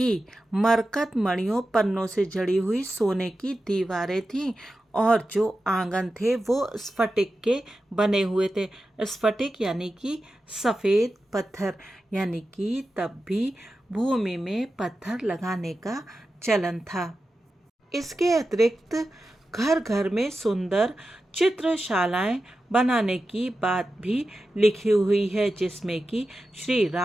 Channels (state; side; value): normal; both; correlation 0.92